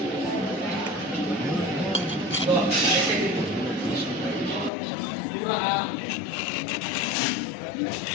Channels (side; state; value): right; drops out; at 4.7 s